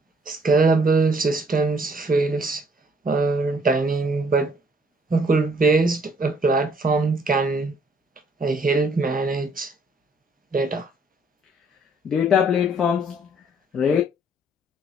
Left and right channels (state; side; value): normal; both; correlation 0.63